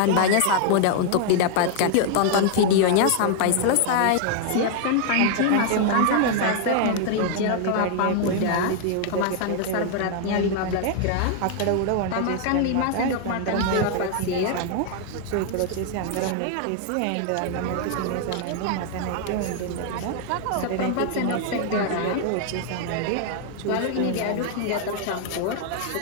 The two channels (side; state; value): both; different; correlation 0.00